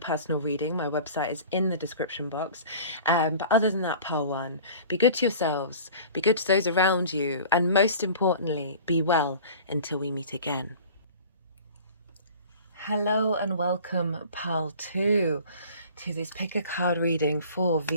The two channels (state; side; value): inverted; both; correlation -0.43